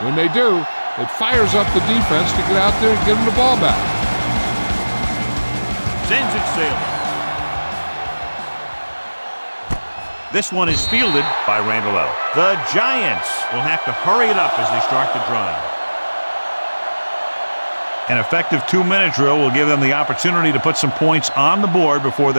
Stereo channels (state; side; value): inverted; both; correlation -1.00